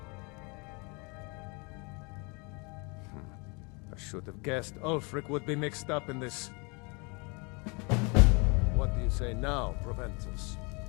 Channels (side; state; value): right; quieter; 30.9 dB